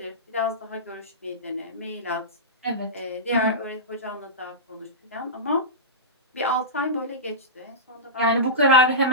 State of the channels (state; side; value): normal; both; correlation -0.17